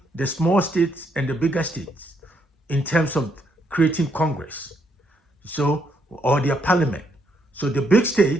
the small states and the bigger states in terms of creating Congress, or their parliament. So the big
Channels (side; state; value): both; normal; correlation 0.74